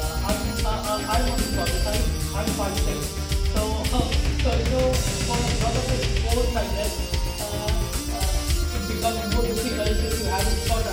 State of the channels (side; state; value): both; identical; correlation 1.00